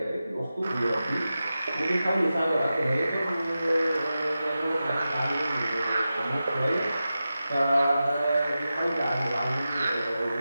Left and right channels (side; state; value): both; inverted; correlation -0.93